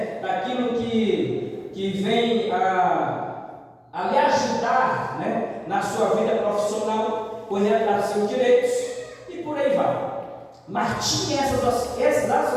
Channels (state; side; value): identical; both; correlation 1.00